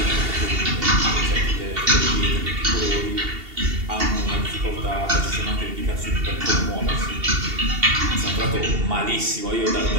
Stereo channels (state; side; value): late; left; 2.7 ms